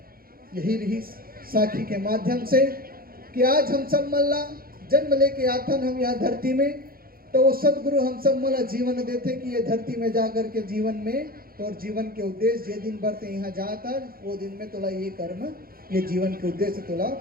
यही रही साखी के माध्यम से कि आज हम सब मल्ला जन्म लेके आथन हम यहाँ धरती में, तो वो सदगुरु हम सब मला जीवन देते कि ये धरती में जाकर के जीवन में तो और जीवन के उद्देश्य जे दिन बढ़ते यहाँ जाता वो दिन में तोला ये कर्म ये जीवन के उद्देश्य तोला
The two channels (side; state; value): left; late; 0.43 ms